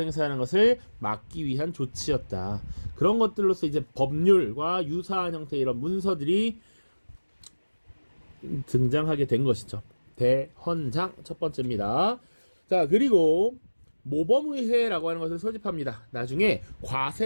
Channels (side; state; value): both; inverted; correlation -1.00